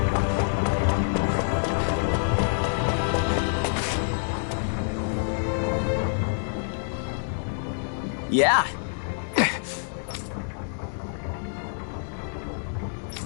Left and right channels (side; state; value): right; silent; digital silence